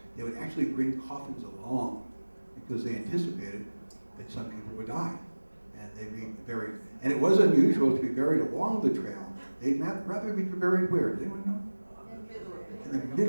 they would actually bring coffins along because they anticipated that some people would die. And they'd be buried. And it was unusual to be buried along the trail. They'd rather be buried where? Does anyone know? In the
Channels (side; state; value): both; inverted; correlation -1.00